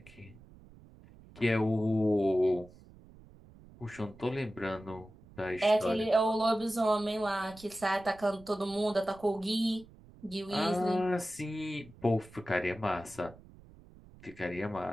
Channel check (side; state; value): right; noise; rumble, 22 dB below the sound